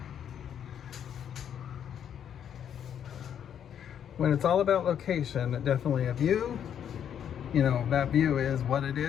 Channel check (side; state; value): right; quieter; 9.0 dB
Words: When it's all about location, definitely a view. You know, that view is what it